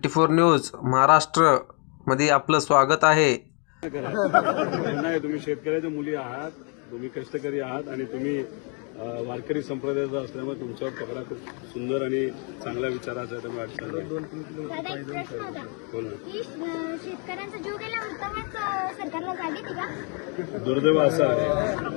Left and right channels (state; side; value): quieter; right; 37.1 dB